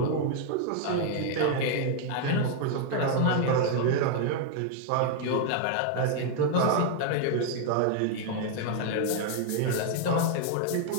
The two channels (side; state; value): both; different; correlation 0.00